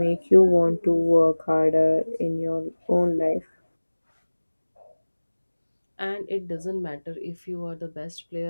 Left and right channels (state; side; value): inverted; both; correlation -1.00